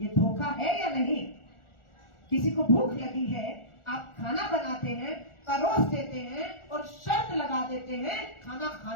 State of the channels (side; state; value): right; late; 1.4 ms